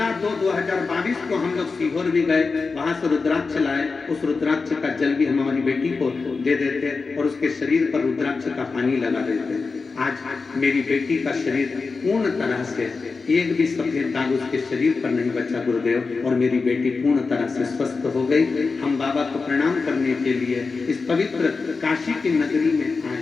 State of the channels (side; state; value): right; quieter; 4.4 dB